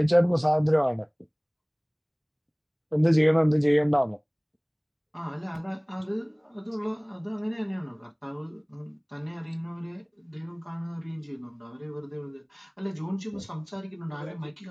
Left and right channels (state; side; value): identical; both; correlation 1.00